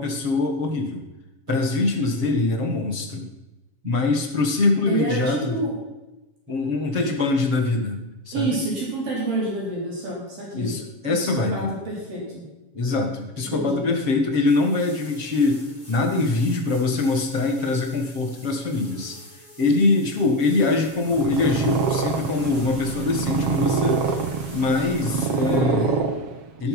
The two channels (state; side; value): late; left; 7.3 ms